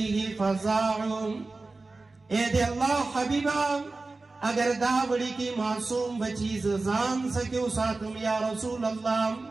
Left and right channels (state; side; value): quieter; left; 3.5 dB